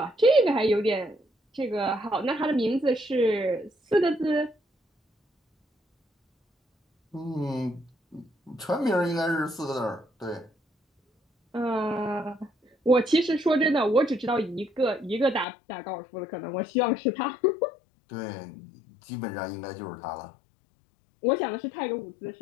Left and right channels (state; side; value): drops out; right; at 15.5 s